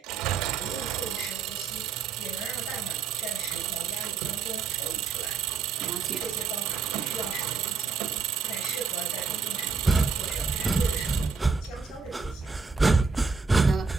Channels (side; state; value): left; quieter; 5.1 dB